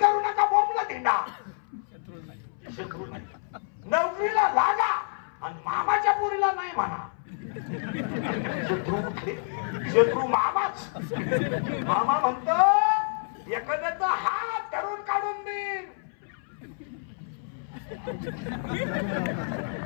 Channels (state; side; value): silent; right; 59 dB below the other